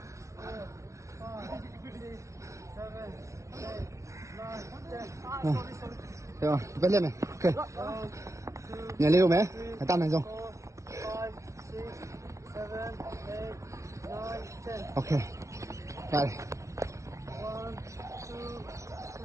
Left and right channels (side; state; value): left; late; 0.14 ms